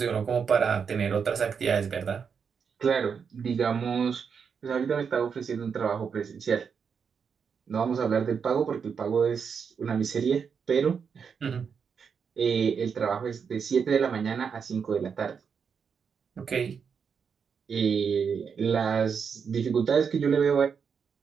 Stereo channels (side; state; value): left; quieter; 6.4 dB